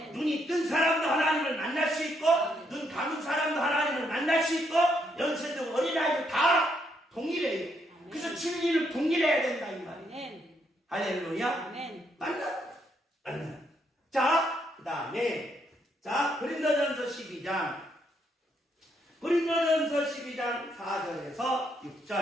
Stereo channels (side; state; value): both; normal; correlation 0.75